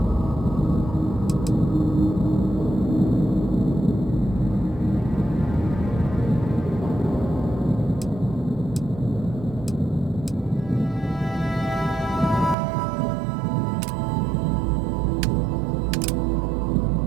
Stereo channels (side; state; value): left; drops out; at 12.6 s